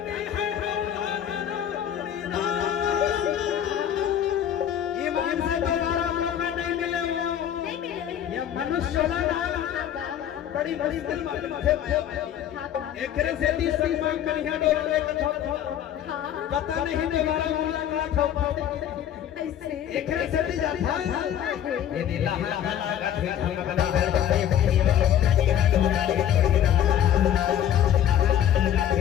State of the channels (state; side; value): quieter; right; 10.2 dB